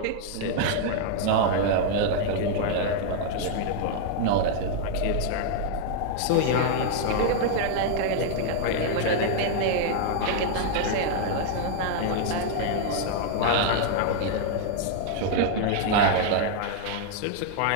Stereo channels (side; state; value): both; different; correlation 0.00